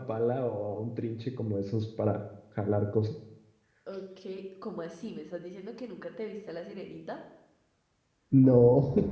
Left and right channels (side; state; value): both; identical; correlation 1.00